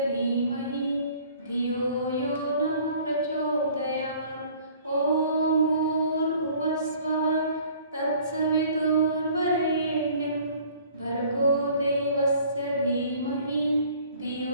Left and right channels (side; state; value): both; inverted; correlation -0.53